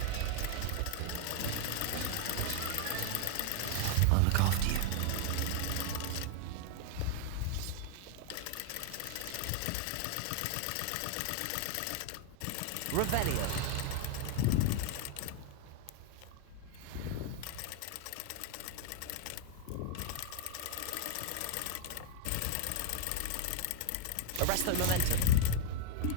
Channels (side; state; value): both; different; correlation 0.00